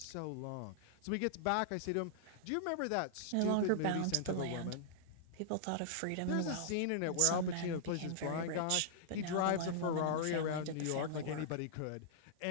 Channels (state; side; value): different; both; correlation -0.01